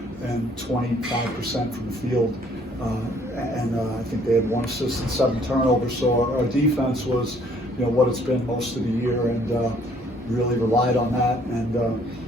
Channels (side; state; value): both; normal; correlation 0.61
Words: and 25% from the field. I think they had 1 assist and 7 turnovers. So our defense was, what it's been most of the year, and really relied on that. And